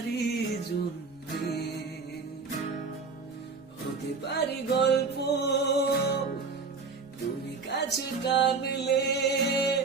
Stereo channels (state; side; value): quieter; left; 4.5 dB